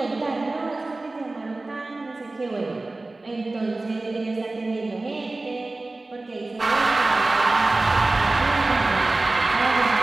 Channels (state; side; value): quieter; left; 3.1 dB